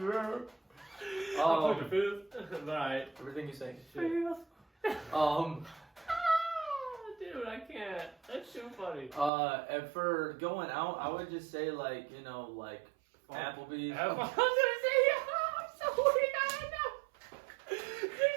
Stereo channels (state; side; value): drops out; left; at 9.3 s